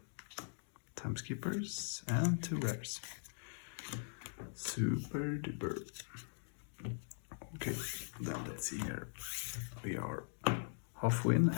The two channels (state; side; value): silent; right; digital silence